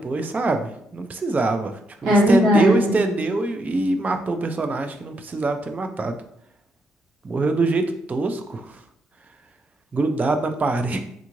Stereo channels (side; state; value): both; normal; correlation 0.79